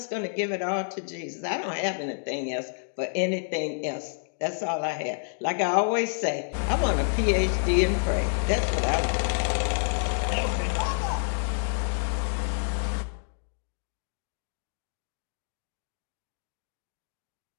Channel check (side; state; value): right; silent; digital silence